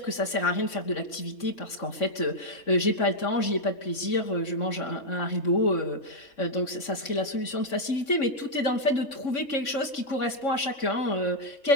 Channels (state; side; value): late; right; 3.6 ms